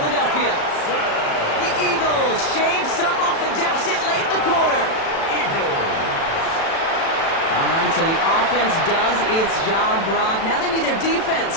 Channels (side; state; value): right; late; 36 ms